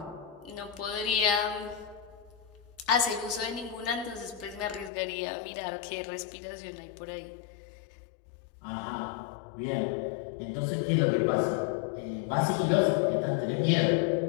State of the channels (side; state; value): right; drops out; at 4.9 s